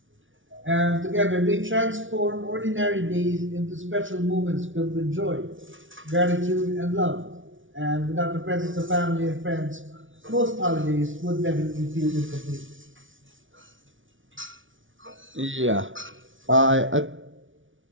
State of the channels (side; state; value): left; late; 0.56 ms